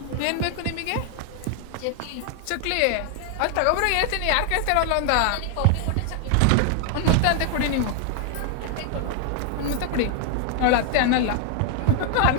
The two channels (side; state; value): both; different; correlation 0.00